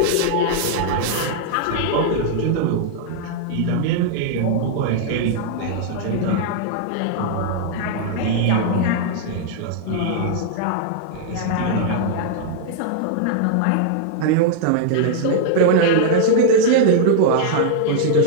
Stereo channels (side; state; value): both; different; correlation -0.01